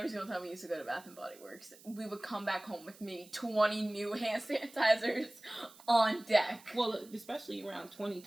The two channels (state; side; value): noise; right; hiss, 22 dB below the sound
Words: single time we used to go to Bath and Body Works, we would come back home with maybe 20 new hand sanitizers on deck. Well, especially around